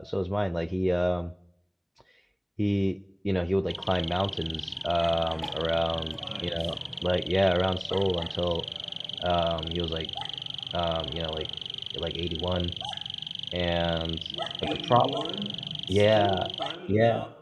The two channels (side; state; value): both; identical; correlation 1.00